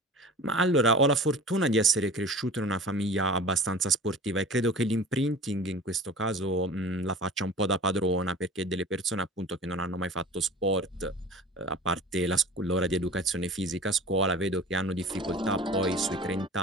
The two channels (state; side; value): normal; both; correlation 0.40